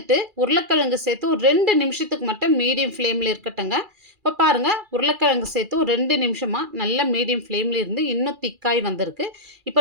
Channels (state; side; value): late; left; 2.4 ms